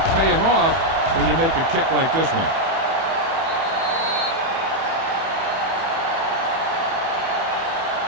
paying off when you make a kick like this one.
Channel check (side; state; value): left; late; 30 ms